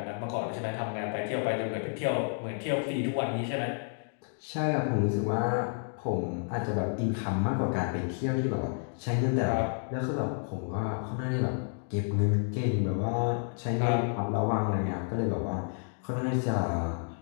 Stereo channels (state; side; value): silent; right; 57 dB below the other